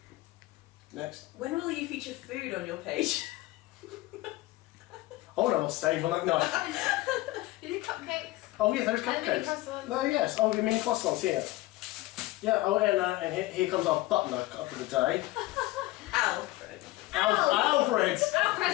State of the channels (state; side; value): quieter; right; 18.6 dB